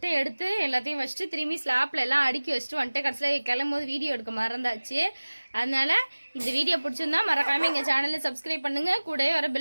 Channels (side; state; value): both; inverted; correlation -1.00